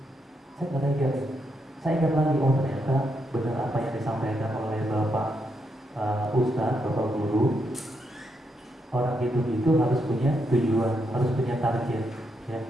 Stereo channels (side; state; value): both; normal; correlation 0.80